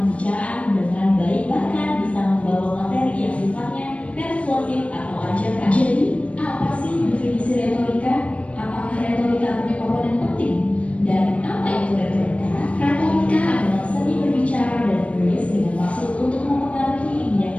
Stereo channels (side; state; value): right; late; 0.063 ms